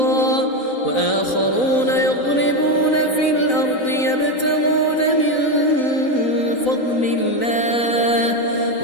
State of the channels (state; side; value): late; right; 4.0 ms